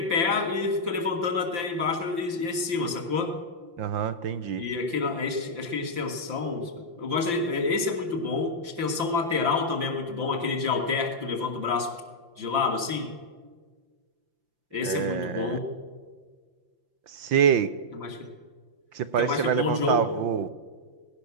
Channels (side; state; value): left; late; 5.8 ms